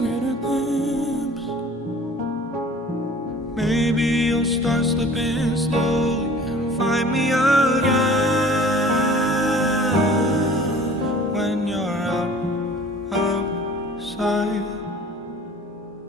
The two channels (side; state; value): both; normal; correlation 0.47